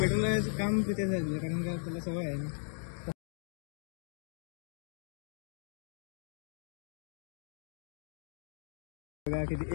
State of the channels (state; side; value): silent; right; digital silence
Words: काम तिथे झालं कारण का त्याला सवय आहे ना. बघा